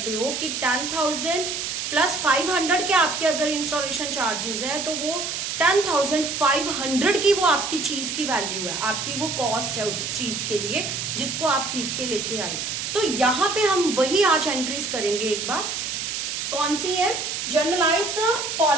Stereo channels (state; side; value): noise; right; hiss, 3 dB below the sound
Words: हो कि 10,000 प्लस 500 के आपके अगर इंस्टॉलेशन चार्जेस है तो वो 10,500 की वो आपकी चीज की वैल्यू है, आपकी वो कॉस्ट है उस चीज के लिए जिसको आप खरीद के लेके आए। तो यहाँ पे हम वही आज एंट्रीज करेंगे। एक बार कौन सी है? Generalized the